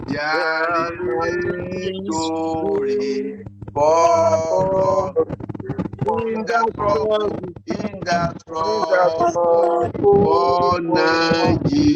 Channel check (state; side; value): identical; both; correlation 1.00